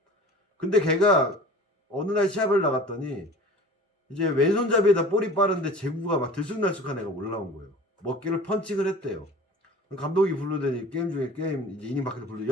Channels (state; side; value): normal; both; correlation 0.42